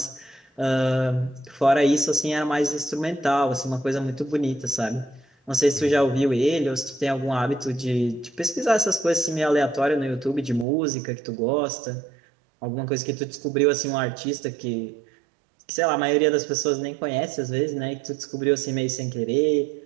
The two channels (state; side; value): drops out; left; at 10.7 s